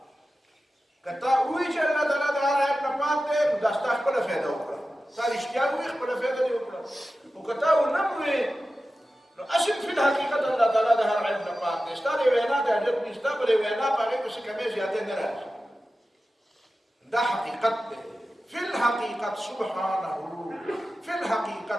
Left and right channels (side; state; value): both; normal; correlation 0.94